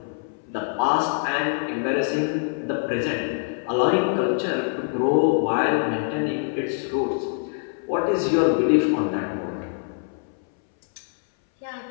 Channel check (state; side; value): silent; right; 62 dB below the other